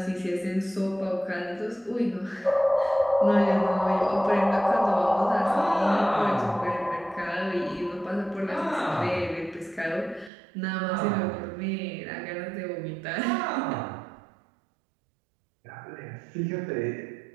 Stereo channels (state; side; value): drops out; left; at 10.3 s